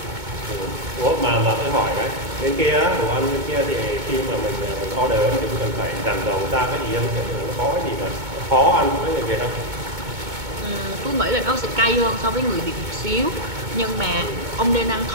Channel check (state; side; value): late; left; 2.2 ms